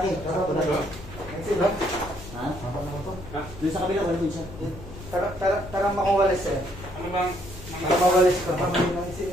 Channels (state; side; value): noise; left; hum, 15 dB below the sound